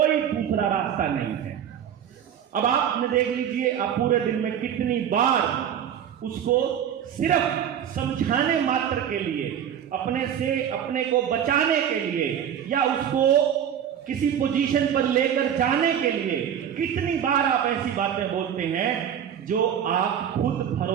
दूसरा रास्ता नहीं है। अब आपने देख लीजिए, आप पूरे दिन में कितनी बार उसको सिर्फ समझाने मात्र के लिए, अपने से अपने को बचाने के लिए या उसको किसी पोजीशन पर लेकर जाने के लिए कितनी बार आप ऐसी बातें बोलते हैं जो आप खुद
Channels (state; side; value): quieter; left; 9.2 dB